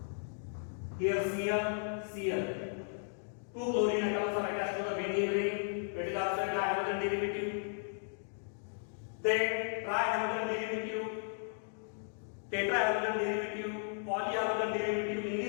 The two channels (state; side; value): silent; right; digital silence